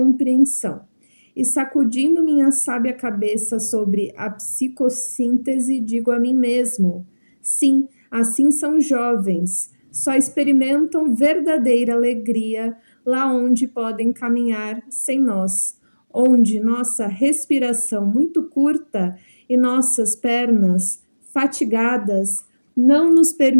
E sacudindo minha sábia cabeça sobre a psicossíntese, digo a mim mesmo: sim, assim são jovens, só experimentam verdadeira alegria lá onde podem caminhar sem nós, onde nossa respiração muito curta e nossas pernas fatigadas não nos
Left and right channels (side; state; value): both; inverted; correlation -1.00